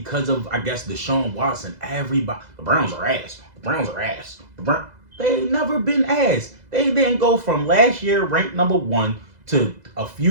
of, I guess, Deshaun Watson, everybody, the Browns are ass. The Browns are ass. They ain't never been ass. They didn't go from last year ranked number 1 to a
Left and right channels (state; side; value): late; left; 2.0 ms